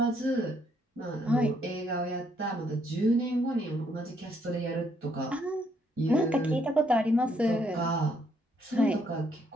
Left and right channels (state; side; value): normal; both; correlation 0.71